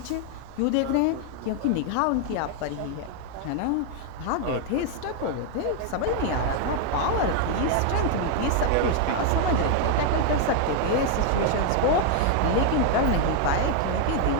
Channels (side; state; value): both; different; correlation 0.01